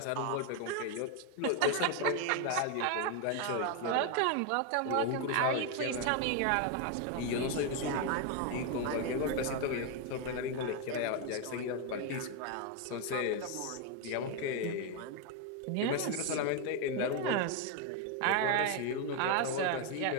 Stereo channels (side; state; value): both; different; correlation 0.01